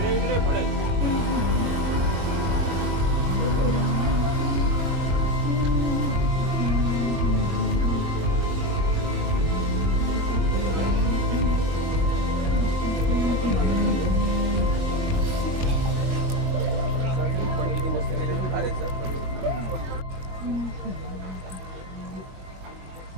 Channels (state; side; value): late; left; 21 ms